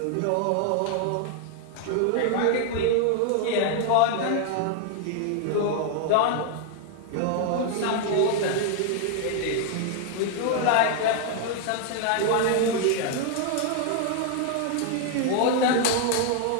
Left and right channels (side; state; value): both; different; correlation 0.00